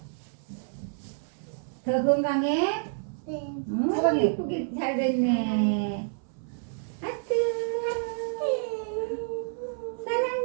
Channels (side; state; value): left; silent; 59 dB below the other